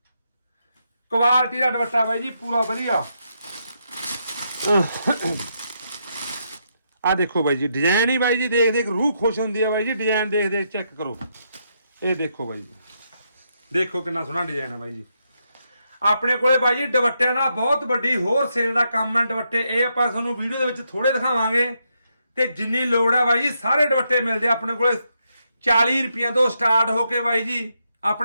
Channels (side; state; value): both; inverted; correlation -0.80